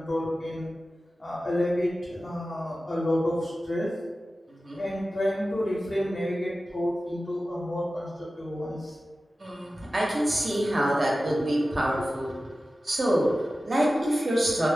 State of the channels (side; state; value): both; normal; correlation 0.95